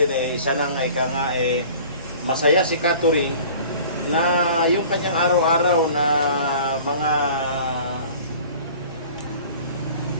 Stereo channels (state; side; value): inverted; both; correlation -0.46